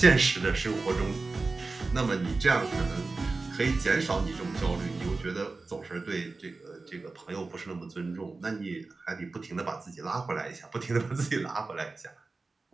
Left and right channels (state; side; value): quieter; left; 3.7 dB